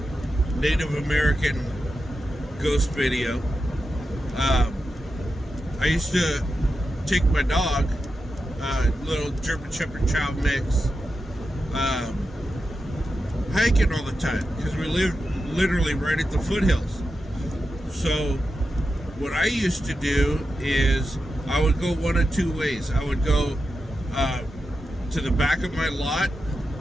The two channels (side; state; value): both; normal; correlation 0.90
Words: Native American ghost video, I used to take my dog, little German Shepherd Chow mix, hiking all the time because we live literally right at the foothills. So what I used to do is I would go one of two ways. I would go to the back of my lot,